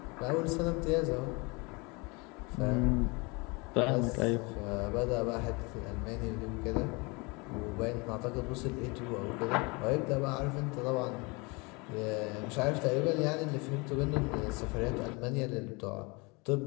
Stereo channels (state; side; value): quieter; right; 28.0 dB